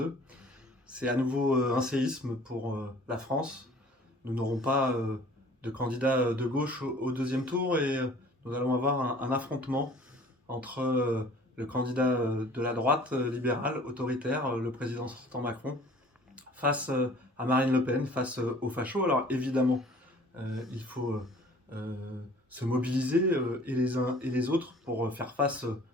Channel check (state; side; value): normal; both; correlation 0.50